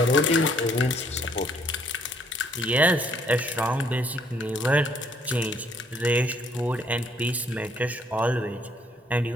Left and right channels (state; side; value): normal; both; correlation 0.66